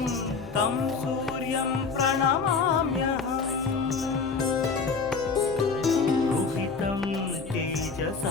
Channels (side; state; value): right; quieter; 4.9 dB